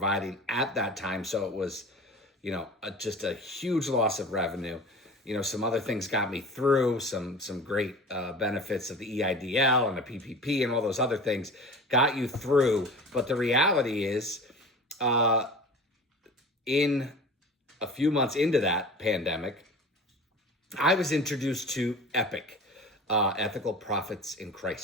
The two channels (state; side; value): normal; both; correlation 0.37